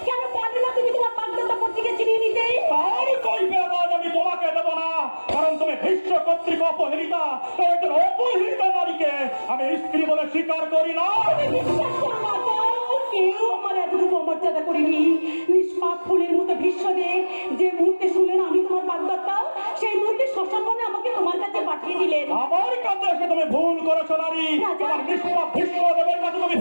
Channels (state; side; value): inverted; both; correlation -1.00